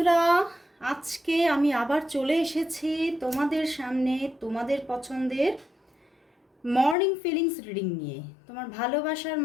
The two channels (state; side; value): drops out; right; at 7.0 s